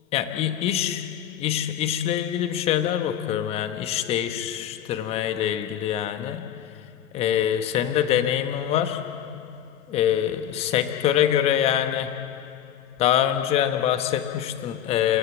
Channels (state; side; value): quieter; right; 10.3 dB